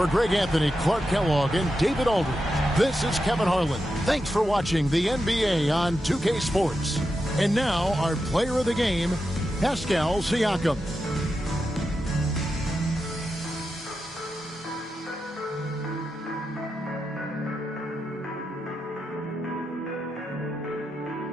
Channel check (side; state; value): both; normal; correlation 0.88